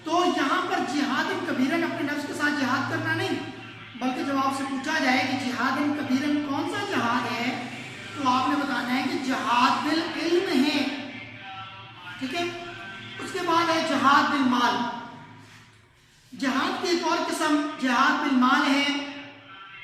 تو یہاں پر جہادن کبیرن اپنے نفس کے ساتھ جہاد کرنا نہیں، بلکہ جب آپ سے پوچھا جائے کہ جہادن کبیرن کون سا جہاد ہے، تو آپ نے بتانا ہے کہ جہاد بالعلم ہے۔ ٹھیک ہے، اس کے بعد ہے جہاد بالمال۔ جہاد کی ایک اور قسم جہاد بالمال ہے۔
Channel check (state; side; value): identical; both; correlation 1.00